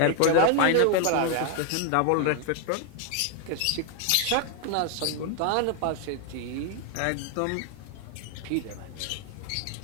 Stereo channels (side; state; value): both; different; correlation 0.01